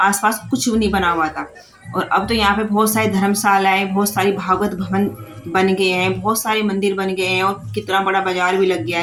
कुछ नहीं बना हुआ था। और अब तो यहाँ पे बहुत सारी धर्मशालाएं, बहुत सारी भागवत भवन बन गए हैं, बहुत सारे मंदिर बन गए हैं, और कितना बड़ा बाजार भी लग गया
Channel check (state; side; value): identical; both; correlation 1.00